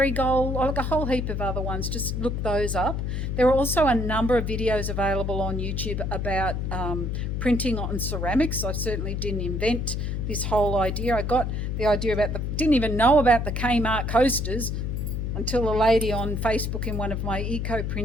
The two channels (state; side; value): noise; left; hum, 2 dB below the sound